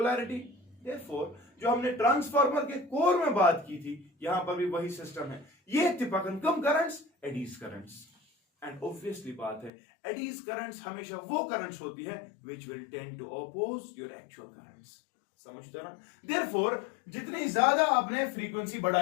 Therefore जो हमने ट्रांसफार्मर के कोर में बात की थी यहां पर भी वही सिस्टम है। ये तिपकन कम currents eddies currents and obviously बात है एडीज करंट्स हमेशा वो करंट्स होती है which will tend to oppose your actual currents, समझते ना। देयरफॉर जितनी ज्यादा आपने फ्रीक्वेंसी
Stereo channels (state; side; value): drops out; right; at 9.7 s